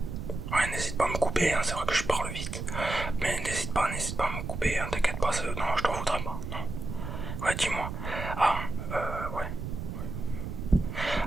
Ouais, n'hésite pas à me couper, hein, c'est vrai que je parle vite. Mais n'hésite pas à me couper, hein, t'inquiète pas, non, je t'en voudrais pas. Non. Ouais, dis-moi. Ah, ouais.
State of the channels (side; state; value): right; noise; rumble, 6 dB below the sound